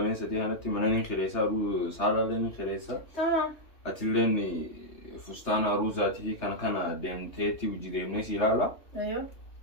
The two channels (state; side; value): late; right; 3.1 ms